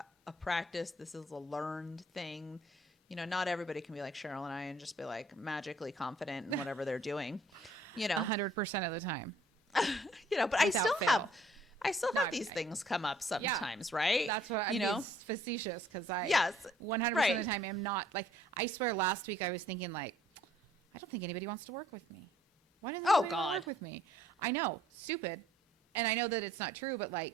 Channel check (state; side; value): normal; both; correlation 0.60